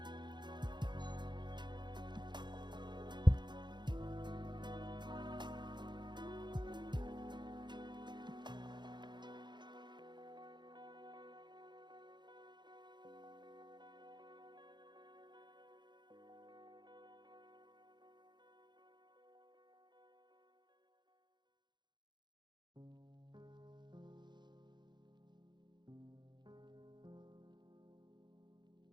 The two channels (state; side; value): late; left; 0.22 ms